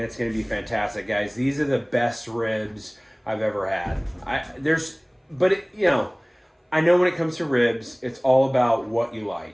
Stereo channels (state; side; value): identical; both; correlation 1.00